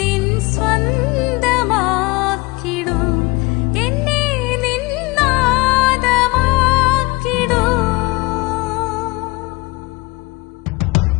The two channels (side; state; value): right; quieter; 23.6 dB